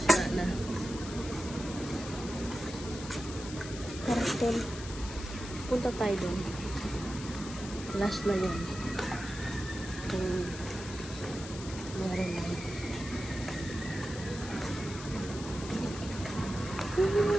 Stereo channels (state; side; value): noise; left; hiss, 12 dB below the sound